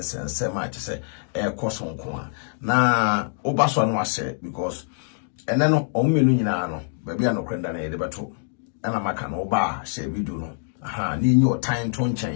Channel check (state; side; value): silent; right; 62 dB below the other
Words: che kosonko na obaso anu a share because and then on me no baby no krenda na yede beto ana maka no ba share video no aha ni nyo time to